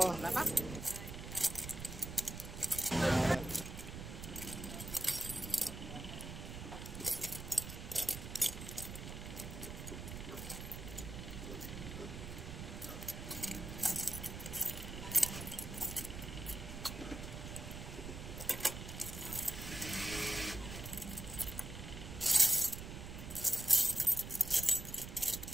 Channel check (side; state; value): right; noise; rumble, 8 dB below the sound